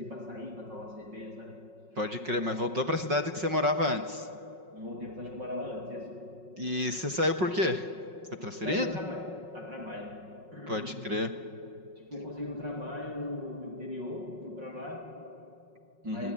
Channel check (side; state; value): left; late; 5.4 ms